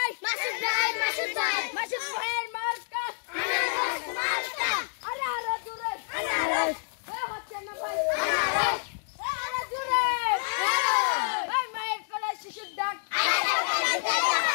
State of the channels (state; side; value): silent; right; digital silence